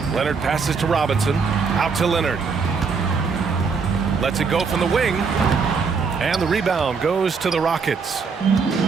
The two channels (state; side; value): quieter; left; 5.2 dB